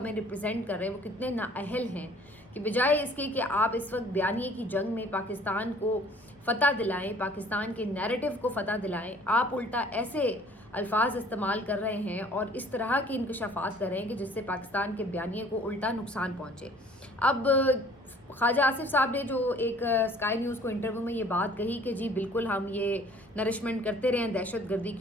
ریپرزینٹ کر رہے ہیں وہ کتنے نااہل ہیں کہ بجائے اس کے کہ آپ اس وقت بیانیے کی جنگ میں پاکستان کو فتح دلائیں، پاکستان کے نیریٹو کو فتح دلائیں، آپ الٹا ایسے الفاظ استعمال کر رہے ہیں اور اس طرح کے انکشافات کر رہے ہیں کہ جس سے پاکستان کے بیانیے کو الٹا نقصان پہنچے۔ اب خواجہ آصف صاحب نے جو ایک اسکائی نیوز کو انٹرویو میں یہ بات کہی کہ جی بالکل ہم یہ نرشمنٹ کرتے رہے ہیں دہشت گردی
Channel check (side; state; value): both; normal; correlation 0.53